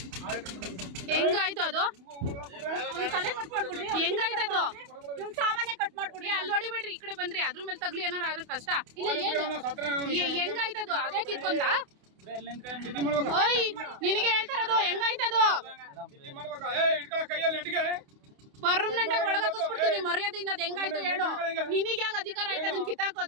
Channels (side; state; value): left; late; 28 ms